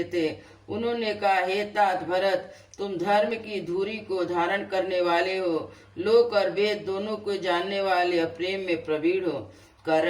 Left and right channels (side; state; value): both; identical; correlation 1.00